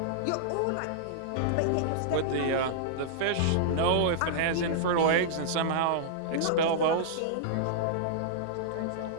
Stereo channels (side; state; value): both; different; correlation -0.02